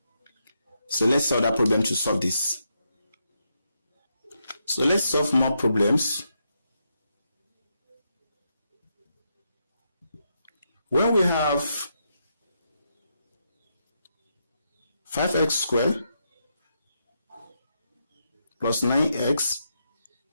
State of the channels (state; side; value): inverted; both; correlation -0.81